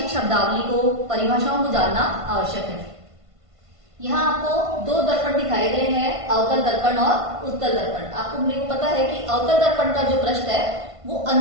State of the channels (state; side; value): late; left; 1.5 ms